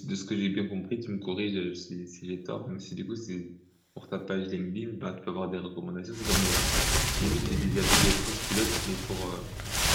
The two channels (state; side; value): identical; both; correlation 1.00